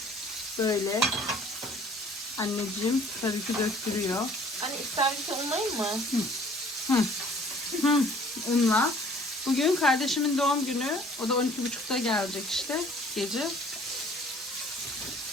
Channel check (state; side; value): normal; both; correlation 0.54